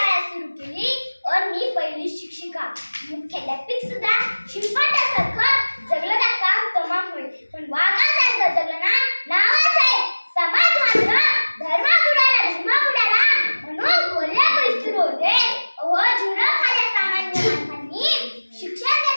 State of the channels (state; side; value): inverted; both; correlation -1.00